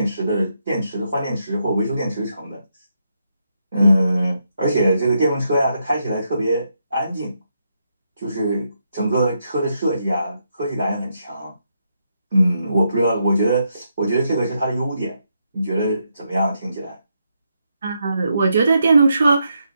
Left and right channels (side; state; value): both; inverted; correlation -0.80